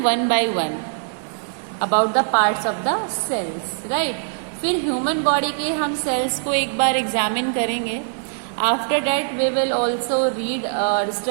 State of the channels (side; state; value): left; silent; 58 dB below the other